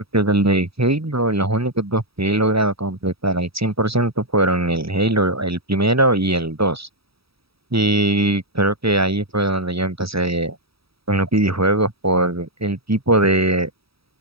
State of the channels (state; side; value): late; left; 0.77 ms